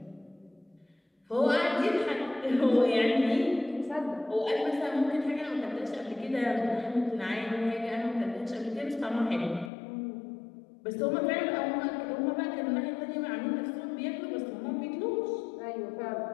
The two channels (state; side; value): drops out; right; at 9.7 s